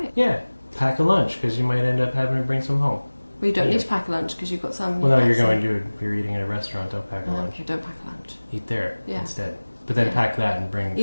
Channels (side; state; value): both; inverted; correlation -1.00